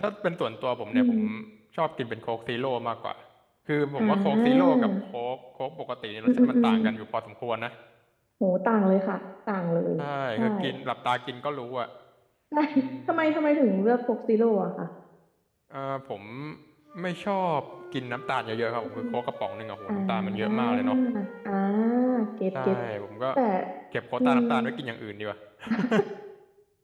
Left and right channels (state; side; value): identical; both; correlation 1.00